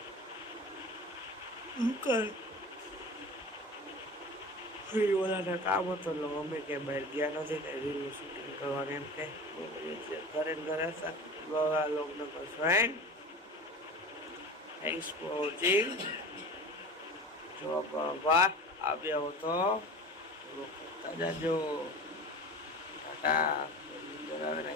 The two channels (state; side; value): normal; both; correlation 0.35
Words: દુકાન. ઓલાને કામ હતો એટલે અમે કે બહાર ગયા નથી, કઈ રીલનું શૂટિંગ કરવાનું એમ કે ઘરે ઘરે હતા. લોકોને ફ્રેન્ડ, થેન્ક્સ ફોર વોચિંગ. જો આભાર. આવ્યા હો તો કરતા જાજો. ટાટા.